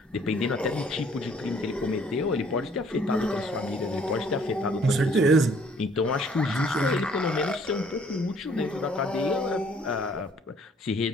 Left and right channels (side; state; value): both; normal; correlation 0.60